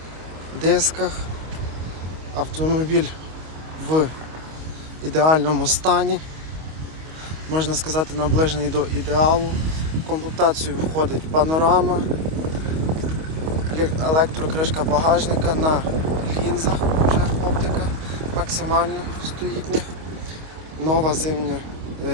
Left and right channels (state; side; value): late; left; 25 ms